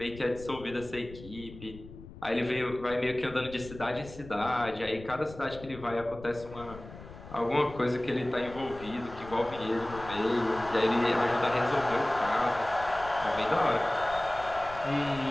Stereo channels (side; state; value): left; noise; rumble, 16 dB below the sound